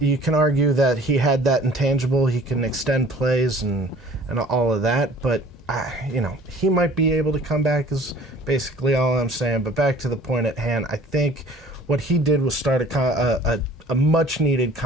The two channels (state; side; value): normal; both; correlation 0.50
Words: can argue that he had that intangible. He can extend plays and all of that. But, you know, he might be able to come back is basically all I'm saying. But back to the point at hand, I think what he did was start a much-needed